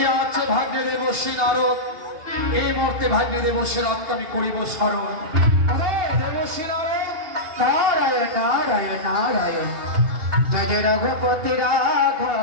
আছে ভাগ্যে দেবশ্রী নারদ। এই মুহূর্তে ভাগ্যে দেবশ্রী নারদকে আমি করিব স্মরণ। দেবশ্রী নারদ নারায়ণ নারায়ণ নারায়ণ জয় জয় রঘুপতি রাঘব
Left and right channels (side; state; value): left; late; 2.7 ms